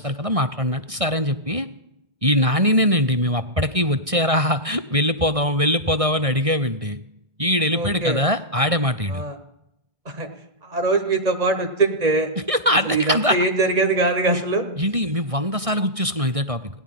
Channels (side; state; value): left; late; 1.6 ms